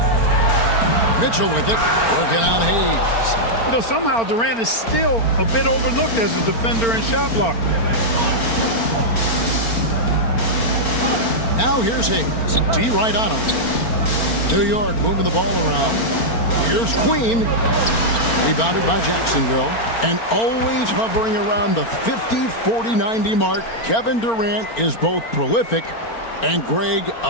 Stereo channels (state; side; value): late; right; 4.4 ms